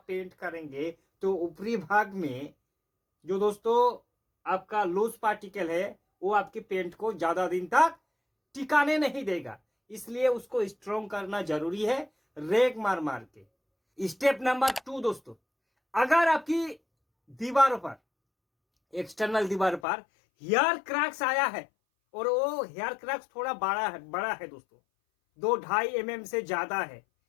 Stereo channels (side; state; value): right; drops out; at 19.8 s